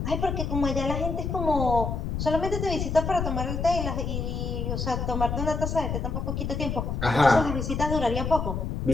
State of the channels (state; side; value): noise; left; rumble, 2 dB below the sound